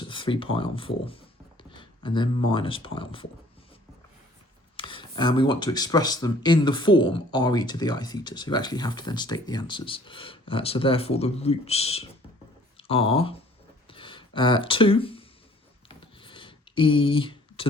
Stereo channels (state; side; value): normal; both; correlation 0.56